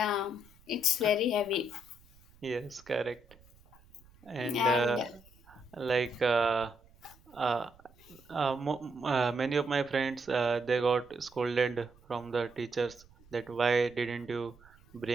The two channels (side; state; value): right; noise; rumble, 27 dB below the sound